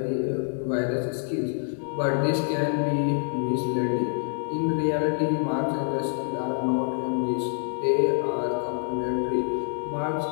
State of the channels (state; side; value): silent; right; 58 dB below the other